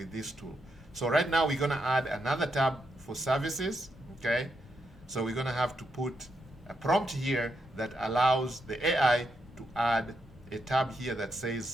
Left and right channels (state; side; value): normal; both; correlation 0.82